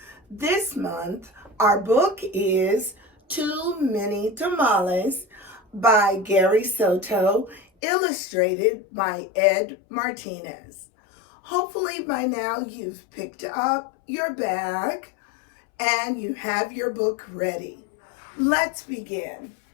This month, our book is Too Many Tamales by Gary Soto, illustrated by Ed Martinez. Hopefully by now you've picked up your bag and you have your book ready. Let's begin.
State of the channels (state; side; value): drops out; right; at 7.7 s